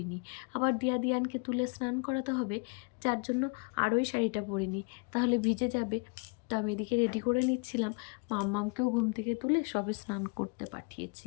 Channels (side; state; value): right; quieter; 32.3 dB